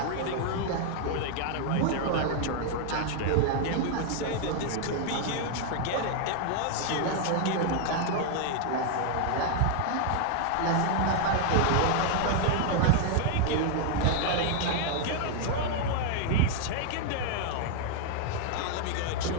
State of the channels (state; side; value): different; both; correlation 0.00